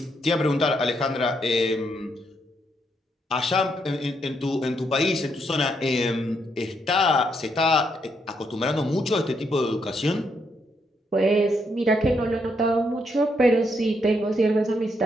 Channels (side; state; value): both; normal; correlation 0.77